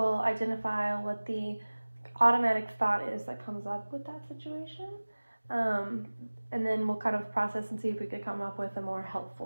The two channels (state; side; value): inverted; both; correlation -1.00